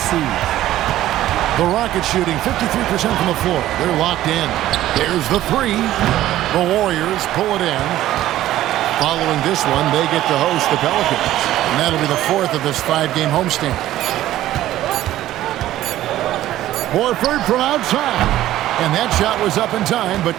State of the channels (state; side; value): quieter; left; 14.0 dB